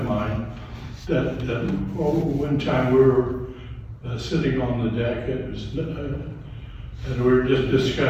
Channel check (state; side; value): identical; both; correlation 1.00